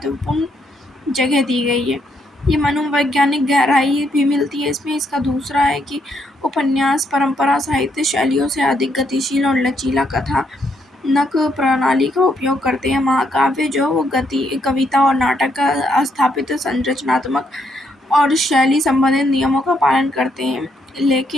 जगह दी गई है। ये मनोवैज्ञानिक गहराई भी मिलती है इसमें। इसका दूसरा है कि उपन्यास परंपरा साहित्य शैलियों से अधिक गतिशील और लचीला कथानक प्रणाली का उपयोग करते हैं। महाकाव्य जो कविता और नाटक का स्थापित संरचनात्मक और शैली संबंधित नियमों का पालन करते हैं,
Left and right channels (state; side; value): normal; both; correlation 0.75